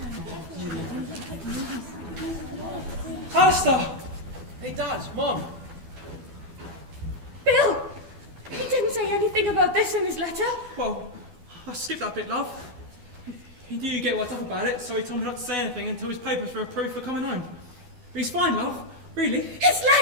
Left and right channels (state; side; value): late; left; 12 ms